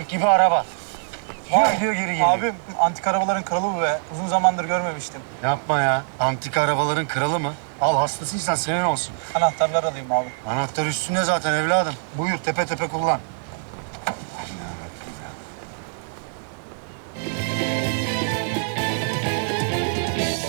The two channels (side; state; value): left; silent; digital silence